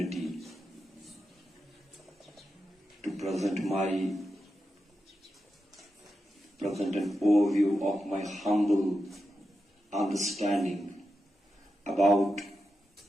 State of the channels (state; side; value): normal; both; correlation 0.89